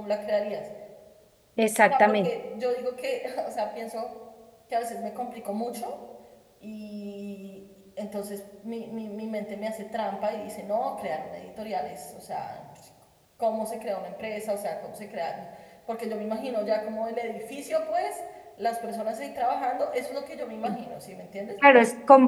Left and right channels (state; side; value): identical; both; correlation 1.00